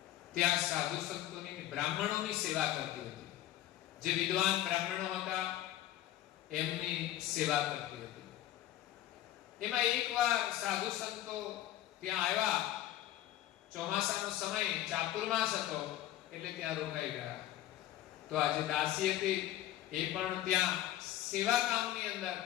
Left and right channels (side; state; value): right; quieter; 13.5 dB